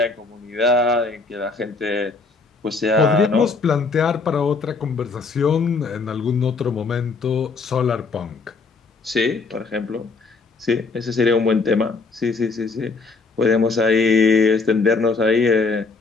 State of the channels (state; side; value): quieter; right; 4.2 dB